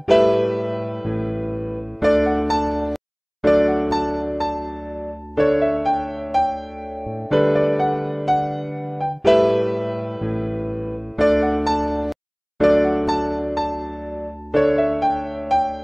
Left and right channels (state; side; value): identical; both; correlation 1.00